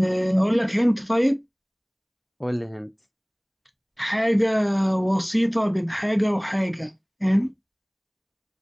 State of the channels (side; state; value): both; identical; correlation 1.00